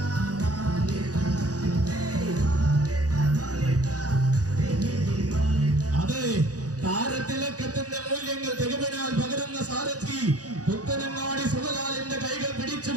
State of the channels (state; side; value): late; left; 0.67 ms